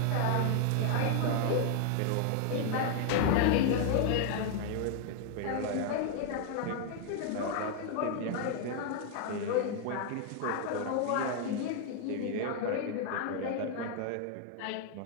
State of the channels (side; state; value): both; different; correlation 0.00